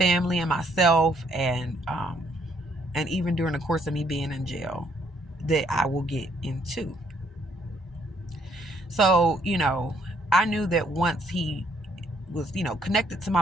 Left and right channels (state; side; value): normal; both; correlation 0.68